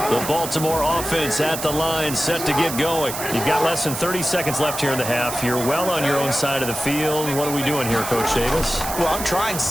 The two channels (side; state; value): right; noise; hiss, 7 dB below the sound